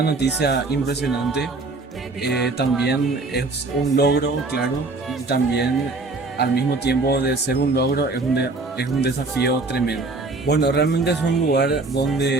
noticia impresionante. También es un logro, claro, y también al mismo tiempo de ser un logro es un desafío tremendo. Bueno, realmente es un lugar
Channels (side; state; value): left; quieter; 3.5 dB